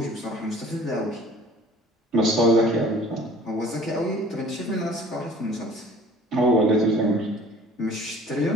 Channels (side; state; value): both; normal; correlation 0.49